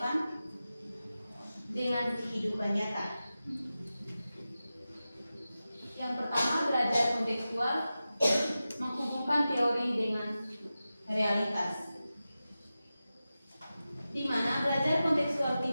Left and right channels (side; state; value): both; inverted; correlation -0.94